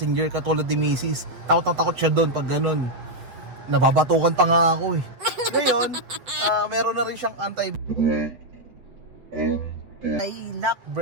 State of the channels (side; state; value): left; late; 8.0 ms